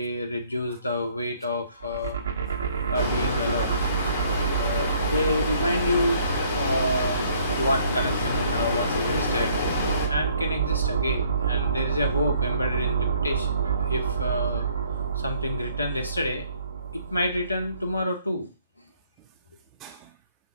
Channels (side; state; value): both; inverted; correlation -0.62